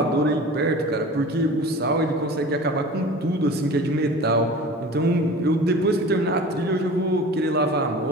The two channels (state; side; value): normal; both; correlation 0.38